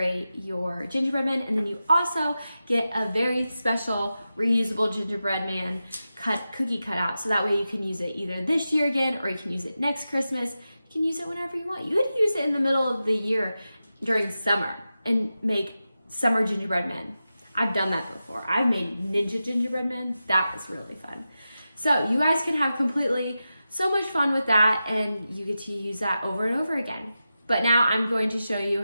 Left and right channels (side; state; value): both; inverted; correlation -0.92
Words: your gingerbread man. And then you also get a very special reusable gingerbread man cookie cutout. So that way you can use it either this year again, or you can use it next Christmas. You can use it whenever you want. You could use it in the middle of the year during summer and make summer gingerbread men. I've done that before. I've made ninja gingerbread men. That was really fun. So you guys can have so much fun with that, and you get to use that over and over again. But now I'm going to show you